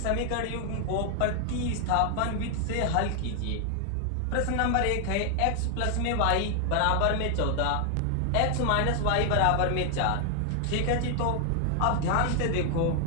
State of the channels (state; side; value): different; both; correlation 0.00